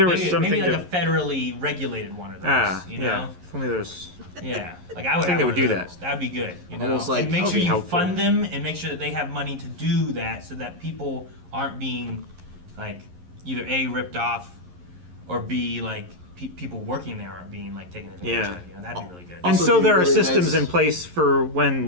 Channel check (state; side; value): late; left; 11 ms